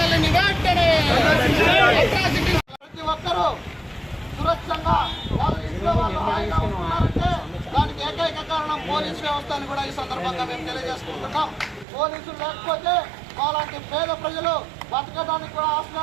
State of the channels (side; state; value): left; drops out; at 11.9 s